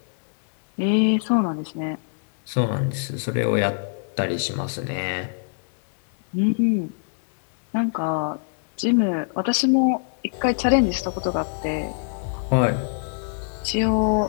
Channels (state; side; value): silent; right; 63 dB below the other